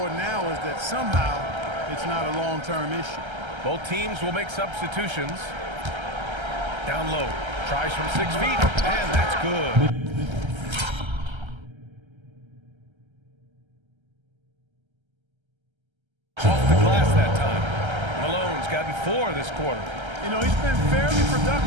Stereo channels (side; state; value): left; late; 1.3 ms